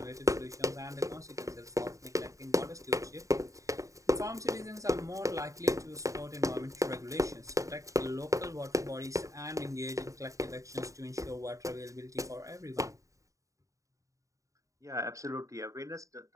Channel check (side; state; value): left; late; 0.16 ms